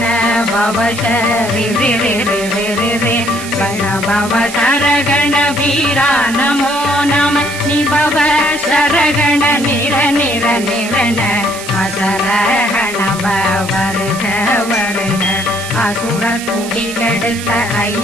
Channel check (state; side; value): noise; right; hiss, 11 dB below the sound